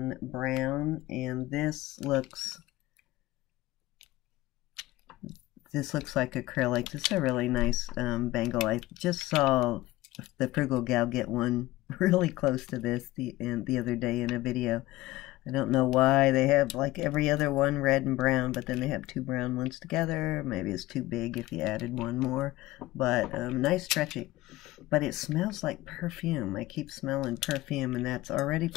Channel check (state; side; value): quieter; right; 17.9 dB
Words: brown, and this looks this looks like acrylic. This is a really nice bangle. I just saw the Frugal Gal get one really close to this the other day in a video. I don't know why they have like every other one red and brown, but then they have two brown ones together. Maybe it's too big if you added one more, but nice stretchy. But it smells like perfume. I keep smelling perfume, and that's already